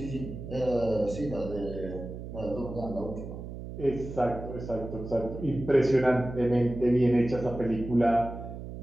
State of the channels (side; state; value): right; noise; hum, 10 dB below the sound